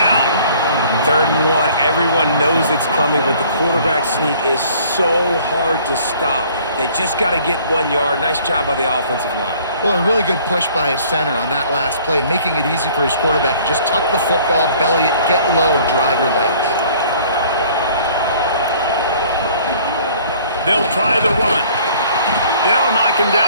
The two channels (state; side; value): inverted; both; correlation -0.55